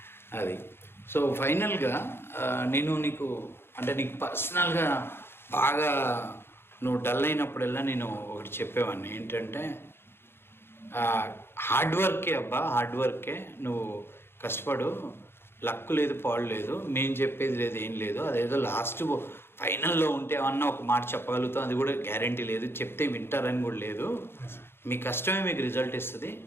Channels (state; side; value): late; right; 0.11 ms